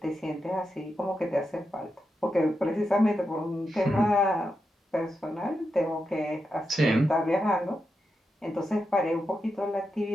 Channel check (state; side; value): normal; both; correlation 0.87